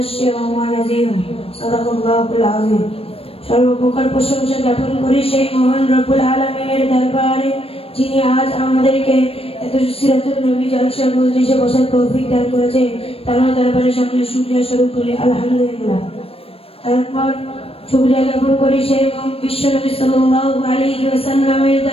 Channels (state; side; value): late; right; 0.28 ms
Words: ونذيرا. صدق الله العظيم. সর্বপ্রকার প্রশংসা জ্ঞাপন করি সেই মহান রব্বুল আলামিনের দরবারে, যিনি আজ আমাদেরকে এত সিরাতুল নবী জলসা মজলিসে বসার তৌফিক দান করেছেন। তার দরবারে সকলে শুকরিয়া স্বরূপ করি আলহামদুলিল্লাহ। তারপর শুকরিয়া জ্ঞাপন করি সেই বিশ্ব নবী সাল্লাল্লাহু আলাইহি ওয়াসাল্লামের